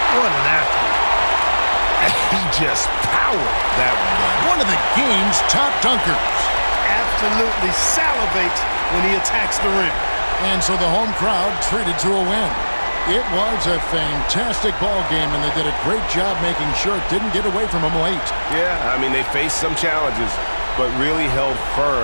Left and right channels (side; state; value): both; inverted; correlation -1.00